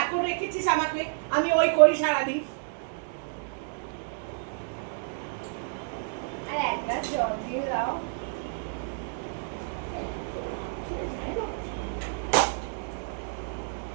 রেখেছিস আমাকে, আমি ওই করি সারাদিন। আর এক গ্লাস জল দিয়ে দাও।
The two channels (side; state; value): left; silent; digital silence